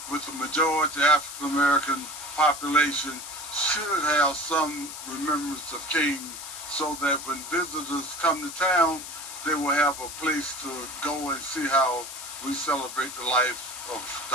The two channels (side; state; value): left; noise; hiss, 10 dB below the sound